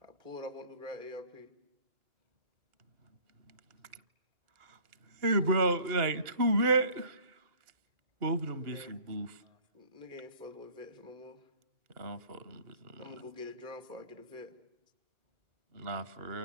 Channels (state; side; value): late; left; 2.8 ms